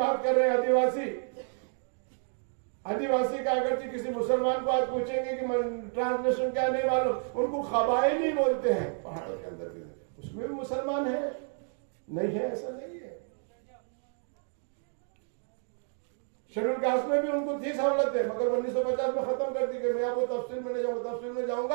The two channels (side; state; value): left; silent; 55 dB below the other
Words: कर रहे हैं, आदिवासी, आदिवासी का अगर किसी मुसलमान को आज पूछेंगे कि ट्रांसलेशन क्या नहीं मालूम, उनको कबायली बोलते हैं। पहाड़ों के अंदर भी उसमें भी मुसलमान है, नहीं है ऐसा नहीं है। शेड्यूल कास्ट में भी उनको थी सहूलतें, मगर 1950 में खत्म कर दी गई। मैं आपको तफसील में नहीं जाऊंगा, तफसील में